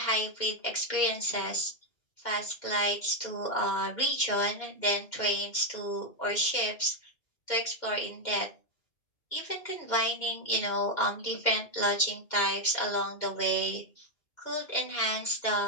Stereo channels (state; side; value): late; right; 2.1 ms